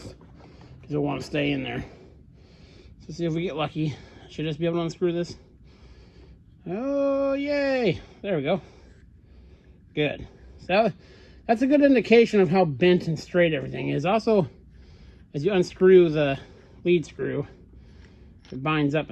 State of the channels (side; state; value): both; identical; correlation 1.00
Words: because you'll want to stay in there. So see if we get lucky. Should just be able to unscrew this. Oh, yay! There we go. Good. So that's a good indication of how bent and straight everything is. Also, as you unscrew the lead screw, it binds up